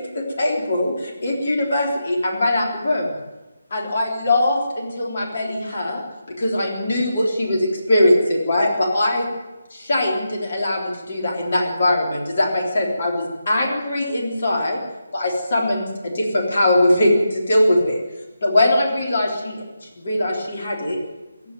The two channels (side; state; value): both; inverted; correlation -0.87